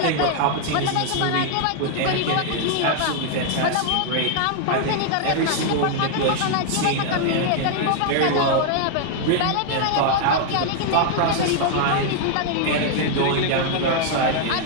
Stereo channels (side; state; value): both; different; correlation 0.00